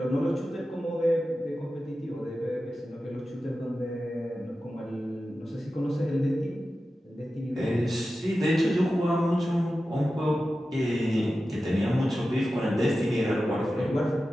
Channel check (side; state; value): both; normal; correlation 0.93